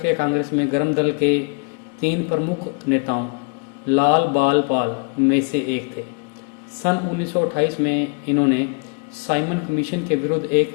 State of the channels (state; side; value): quieter; right; 36.8 dB